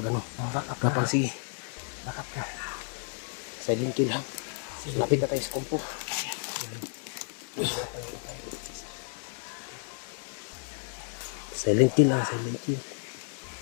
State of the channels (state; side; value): silent; right; 57 dB below the other